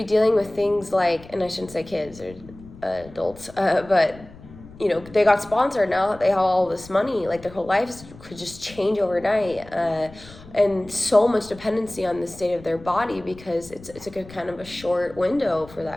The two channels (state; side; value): noise; left; rumble, 20 dB below the sound